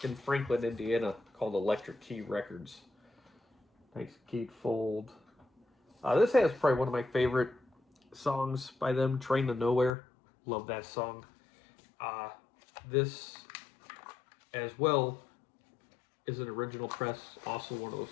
Franklin, Indiana, called Electric Key Records. Nice gatefold. This has probably one of my favorite songs by them, Train to Nowhere. Love that song. This, as well, is an original press, also one of those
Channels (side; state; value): right; drops out; at 9.9 s